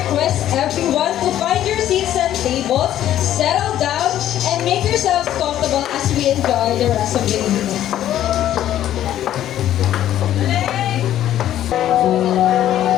everyone to find your seats and tables, settle down, and make yourselves comfortable as we enjoy the rest of the evening.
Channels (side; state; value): right; quieter; 12.0 dB